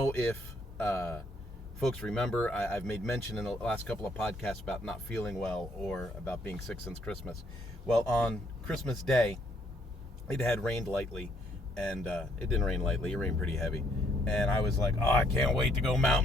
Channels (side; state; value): both; normal; correlation 0.69